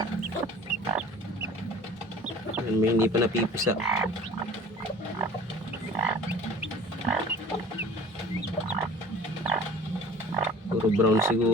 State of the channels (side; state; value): both; normal; correlation 0.45